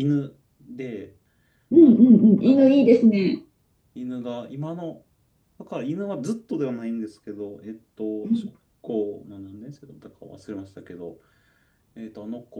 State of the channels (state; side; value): identical; both; correlation 1.00